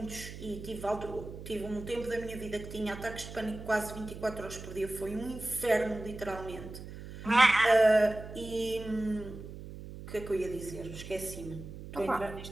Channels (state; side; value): noise; right; hum, 12 dB below the sound